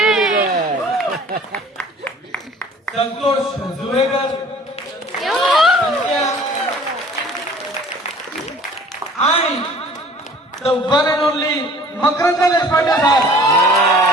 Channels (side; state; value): both; normal; correlation 0.49